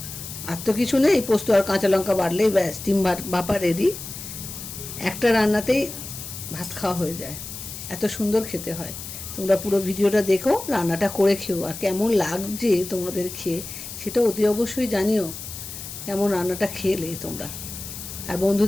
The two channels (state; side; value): noise; left; hiss, 10 dB below the sound